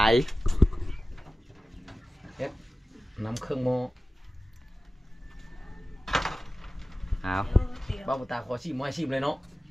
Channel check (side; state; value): both; normal; correlation 0.96